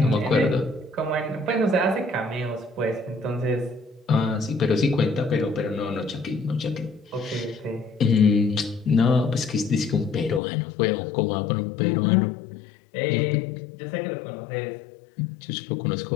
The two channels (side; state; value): right; drops out; at 10.4 s